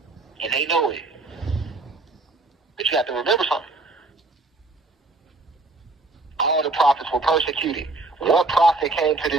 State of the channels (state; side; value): quieter; left; 3.3 dB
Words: And they know it. But you have to remember something. All the prophets were persecuted. What prophet came to